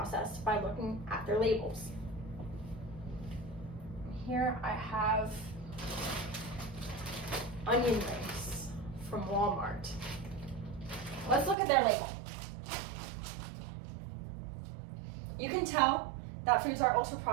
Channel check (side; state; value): left; drops out; at 11.6 s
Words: by looking at their labels. Here I have onion rings from Walmart. Let's look at their label. You can tell that foods are